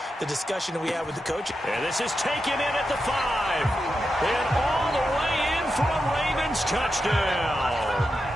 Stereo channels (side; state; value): both; normal; correlation 0.88